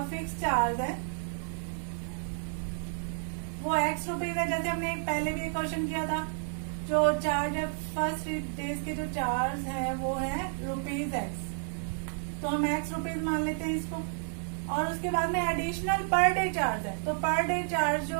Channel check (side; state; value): left; silent; digital silence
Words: फिक्स चार्ज है वो x रुपीज है, जैसे हमने पहले भी एक क्वेश्चन किया था। जो चार्ज है फर्स्ट 3 डेज के जो चार्ज है वो है ₹x, तो हम x रुपीज मान लेते हैं इसको। और उसके बाद में एडिशनल पर डे चार्ज है, तो पर डे चार्ज जो